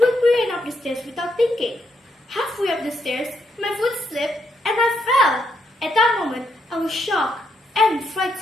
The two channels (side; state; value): both; normal; correlation 0.77